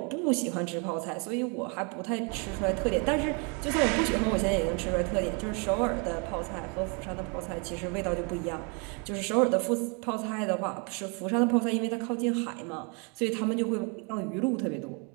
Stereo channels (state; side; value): quieter; left; 34.5 dB